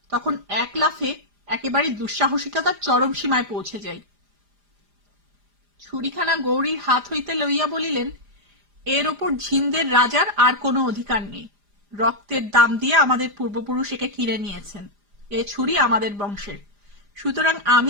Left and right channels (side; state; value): left; late; 4.9 ms